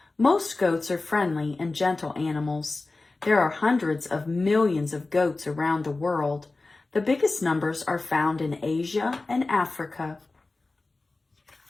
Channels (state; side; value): quieter; right; 3.4 dB